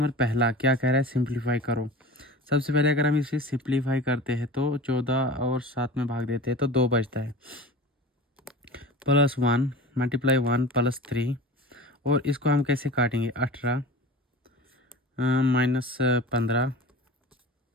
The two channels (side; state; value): both; normal; correlation 0.36